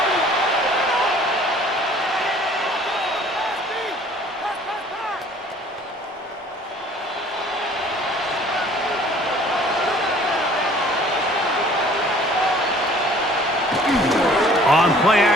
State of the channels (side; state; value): both; normal; correlation 0.53